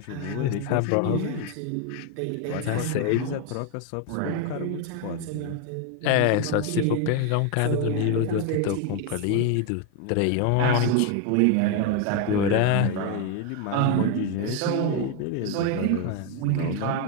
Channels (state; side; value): different; both; correlation 0.01